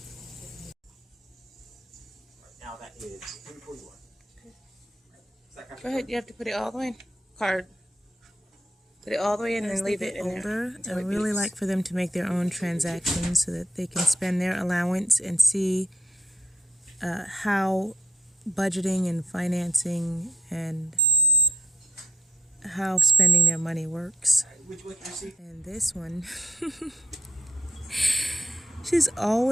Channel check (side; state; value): both; normal; correlation 0.71